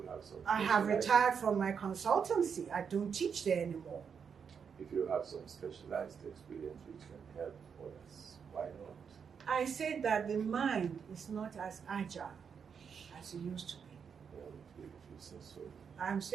have some... I have retired from my consultancy. I don't teach there anymore. If you have some specialized experience which can help others, why not? I said that the mind is not as agile as it used to be. Well, if you say so. I'm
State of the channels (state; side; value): quieter; left; 6.7 dB